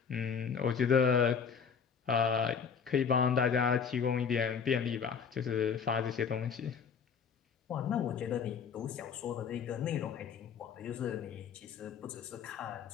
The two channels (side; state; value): right; quieter; 6.5 dB